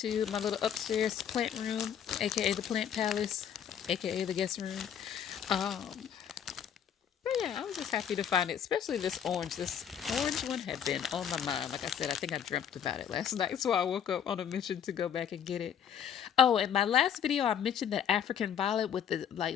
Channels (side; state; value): right; quieter; 8.7 dB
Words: my little upstairs plant room, aka the plant palace, aka the guest room. But yeah, I was just happy to find it, especially this orange. This orange one had been on my mind. Like I said, I think I dreamt about it last night, so I woke up on a mission to go back and get it. Oh, in my last video, I mentioned that African violet with the